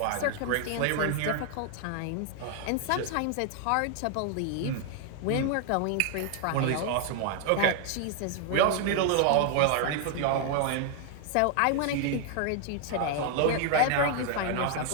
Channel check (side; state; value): both; different; correlation 0.00